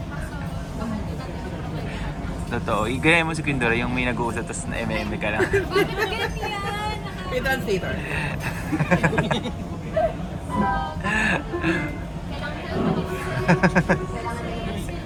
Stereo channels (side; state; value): both; identical; correlation 1.00